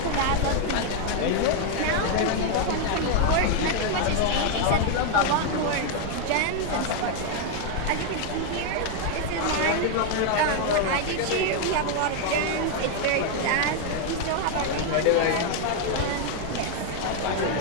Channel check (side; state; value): both; different; correlation 0.01